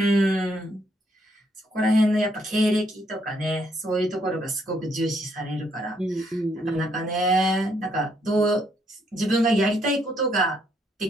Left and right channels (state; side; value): normal; both; correlation 0.72